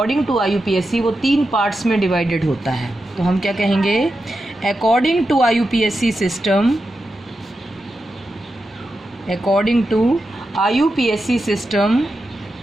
टू IUPAC वो 3 पार्ट्स में डिवाइडेड होता है। तो हम क्या कहेंगे, according to IUPAC system, according to IUPAC system,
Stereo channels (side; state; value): both; normal; correlation 0.89